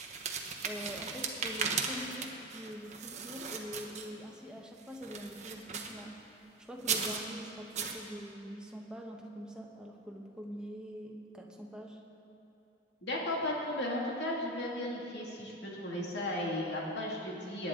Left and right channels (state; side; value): normal; both; correlation 0.19